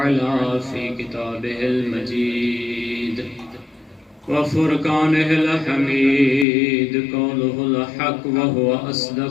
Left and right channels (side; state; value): right; drops out; at 6.5 s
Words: في كتابه المجيد وفرقانه الحميد قوله الحق وهو